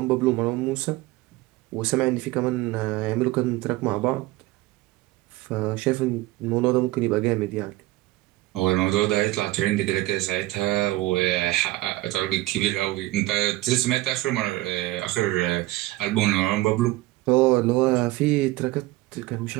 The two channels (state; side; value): quieter; left; 18.3 dB